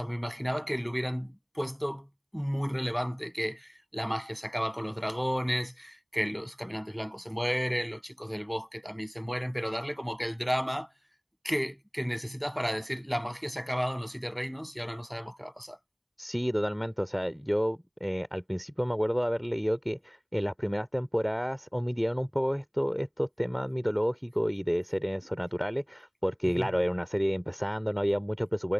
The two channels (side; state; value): both; identical; correlation 1.00